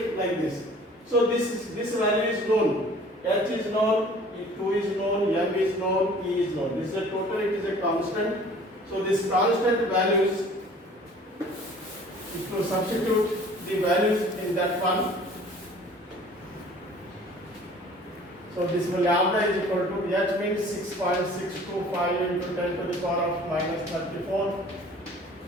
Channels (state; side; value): normal; both; correlation 0.49